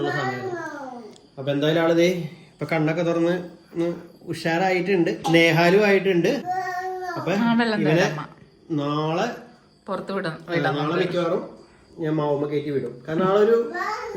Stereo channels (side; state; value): both; identical; correlation 1.00